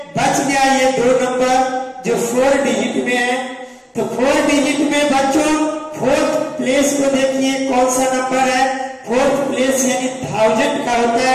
बच गया ये 2 नंबर जो 4 डिजिट में है। तो 4 डिजिट में बच्चों 4th प्लेस को देखिए कौन सा नंबर है? 4th प्लेस यानी 1000 का होता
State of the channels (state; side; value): identical; both; correlation 1.00